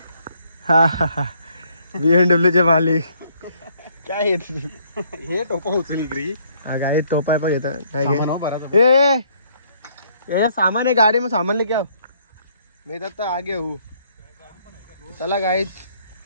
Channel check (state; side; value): inverted; both; correlation -0.67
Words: हा BMW मालिक काय येत हे टोपा उचली ग्री. हा गाडी टोपा आहे पण येतं काय सामान आहे गाडी में, सामान लेके आओ. मी तर आगे हूँ. चला गाईच